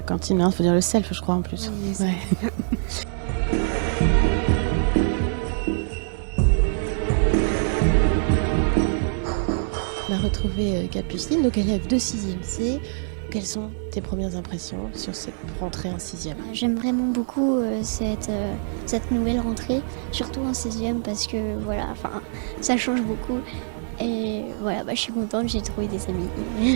cantine, il faut dire le self, je crois, en plus. Oui, c'est Ouais. On a retrouvé Capucine, donc élève de 6e C. Quelles sont tes premières impressions sur cette rentrée en 6e ? J'aime vraiment beaucoup cette nouvelle rentrée, surtout en 6e parce que ça change beaucoup. Et voilà, je suis contente, j'ai trouvé des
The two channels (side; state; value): left; silent; 62 dB below the other